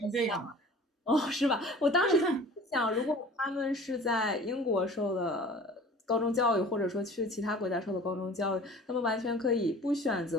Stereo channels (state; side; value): normal; both; correlation 0.44